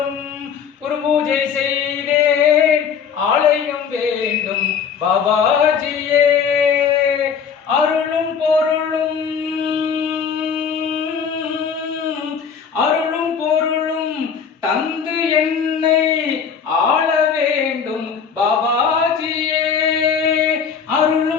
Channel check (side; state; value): right; quieter; 6.8 dB